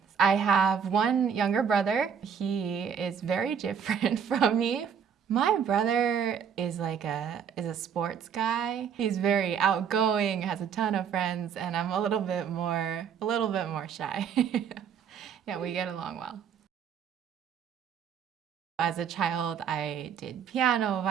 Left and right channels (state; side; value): quieter; left; 7.5 dB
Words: I have one younger brother. He is very different from me. My brother is a sports guy. He's very outgoing, has a ton of friends, and I'm a little bit more shy. Yeah, we get along well. As a child, I did piano,